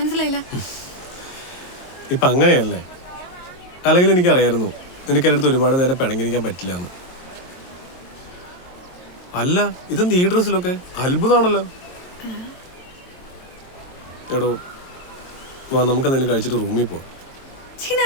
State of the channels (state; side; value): late; right; 22 ms